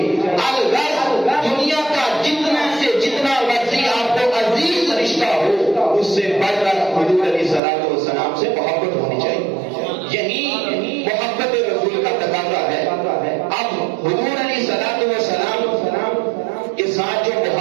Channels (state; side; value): drops out; left; at 7.6 s